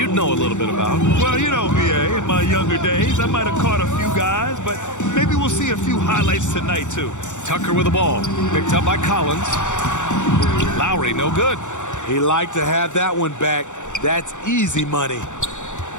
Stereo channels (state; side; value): late; right; 0.85 ms